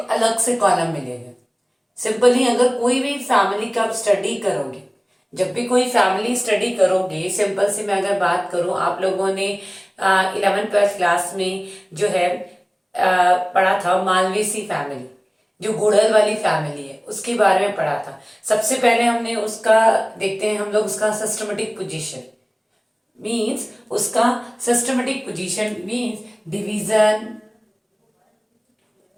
से कॉलम मिलेगा। सिंपली अगर कोई भी फैमिली का आप स्टडी करोगे, जब भी कोई फैमिली स्टडी करोगे, सिंपल से मैं अगर बात करूं, आप लोगों ने 11th-12th क्लास में जो है पढ़ा था मालवेसी फैमिली, जो गुड़हल वाली फैमिली है उसके बारे में पढ़ा था। सबसे पहले हमने उसका देखते हैं हम लोग उसका सिस्टमेटिक पोजीशन मींस उसका सिस्टमेटिक पोजीशन मींस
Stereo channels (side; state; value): both; identical; correlation 1.00